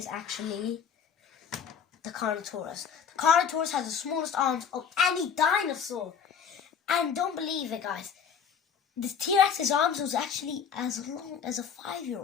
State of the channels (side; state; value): right; quieter; 7.1 dB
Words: actually the Carnotaurus. The Carnotaurus has the smallest arms of any dinosaur. And don't believe it, guys. The T-Rex's arms was actually as long as a